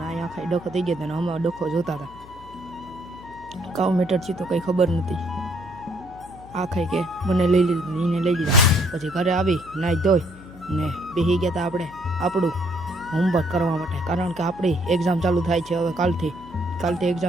ને અહીંયા આખાઈ ડખો થઈ ગયો હતો ને અમે ડખો જોતા હતા. કાવ મીટર છે તો કંઈ ખબર નથી. આ ખાઈ કે મને લઈ લીધું, એને લઈ લીધા. પછી ઘરે આવી નાહી ધોઈ ને બેસી ગયા હતા આપણે આપણું હોમવર્ક કરવા માટે. કારણ કે આપણી એક્ઝામ ચાલુ થાય છે હવે કાલથી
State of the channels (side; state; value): left; noise; hum, 21 dB below the sound